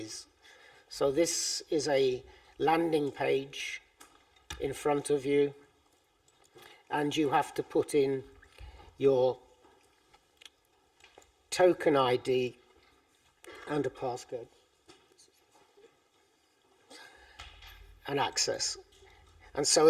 So this is a landing page in front of you, and you have to put in your token ID and a passcode and access. And so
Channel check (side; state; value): both; identical; correlation 1.00